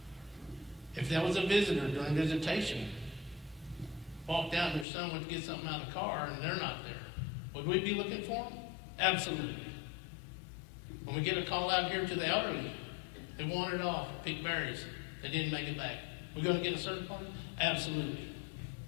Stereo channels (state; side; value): drops out; right; at 4.9 s